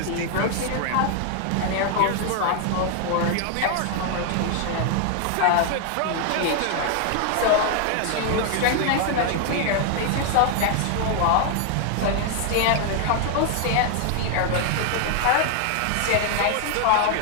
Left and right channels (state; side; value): different; both; correlation 0.00